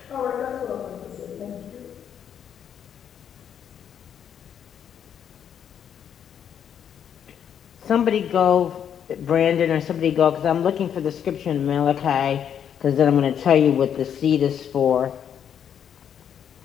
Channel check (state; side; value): quieter; right; 8.7 dB